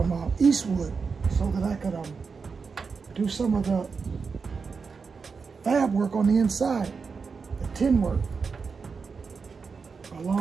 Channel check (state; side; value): quieter; left; 5.2 dB